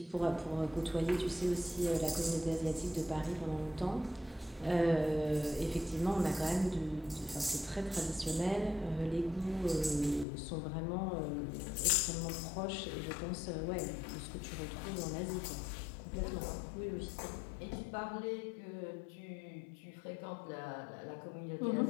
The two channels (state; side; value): drops out; right; at 10.2 s